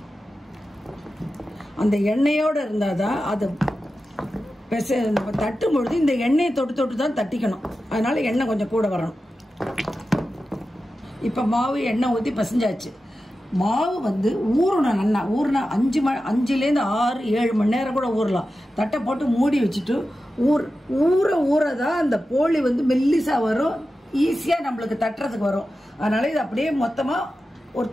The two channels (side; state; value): both; normal; correlation 0.92